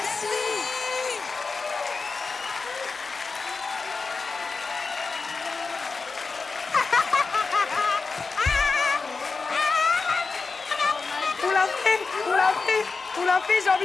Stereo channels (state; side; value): quieter; right; 4.4 dB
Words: On l'a fait, on l'a fait, on l'a fait, j'ai